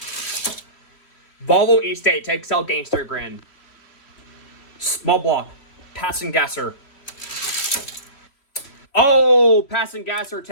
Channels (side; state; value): right; late; 3.1 ms